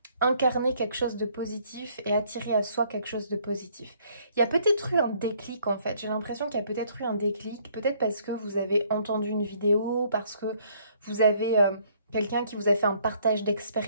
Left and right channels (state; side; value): inverted; both; correlation -0.64